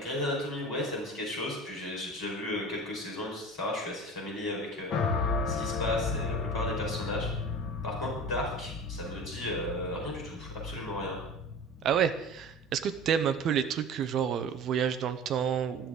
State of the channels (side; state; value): both; normal; correlation 0.36